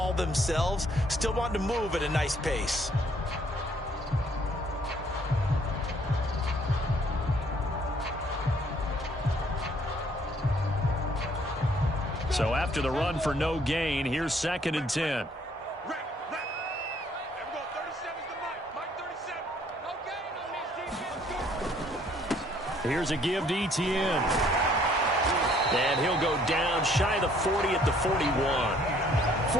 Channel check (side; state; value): both; normal; correlation 0.63